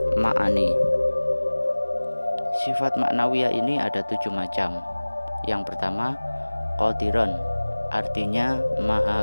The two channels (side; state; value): both; inverted; correlation -1.00